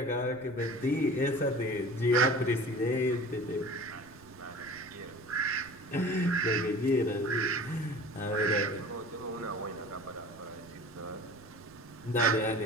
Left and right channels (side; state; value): right; noise; rumble, 24 dB below the sound